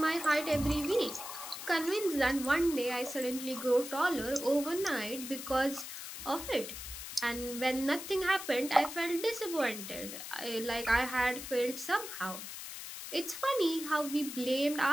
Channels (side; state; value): left; noise; hiss, 9 dB below the sound